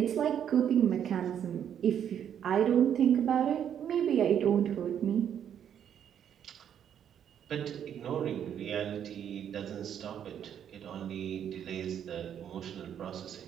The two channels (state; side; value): quieter; left; 9.2 dB